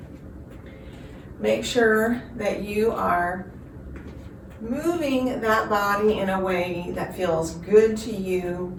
Make sure that you are moving that body in a way that feels good to you.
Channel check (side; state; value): both; identical; correlation 1.00